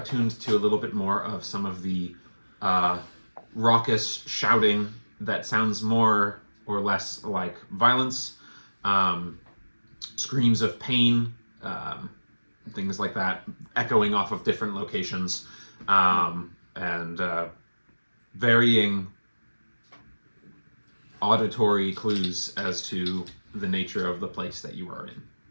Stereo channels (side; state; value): both; inverted; correlation -1.00